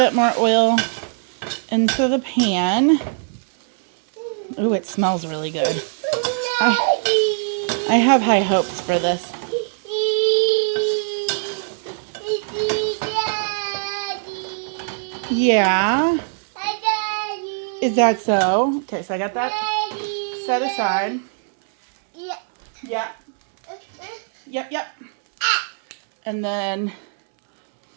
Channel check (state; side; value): silent; left; 64 dB below the other